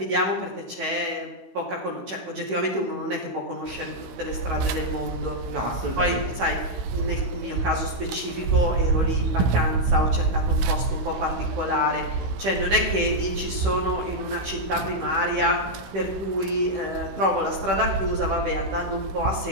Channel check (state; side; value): late; left; 16 ms